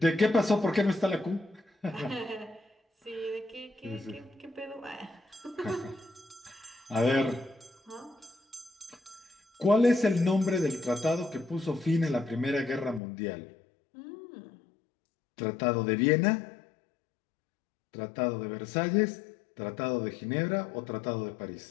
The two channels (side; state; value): right; drops out; at 13.0 s